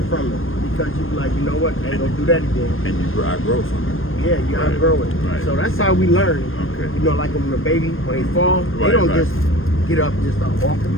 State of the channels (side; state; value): right; late; 0.59 ms